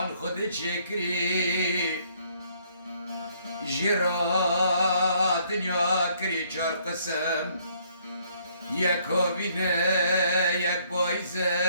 خود شکری جرا دنیا کری چار قسم یک هابینه یک بایزه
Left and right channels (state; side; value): inverted; both; correlation -0.66